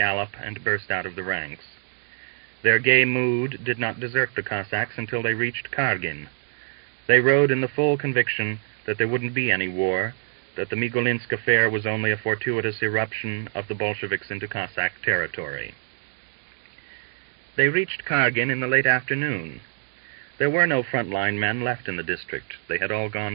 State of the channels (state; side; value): silent; left; digital silence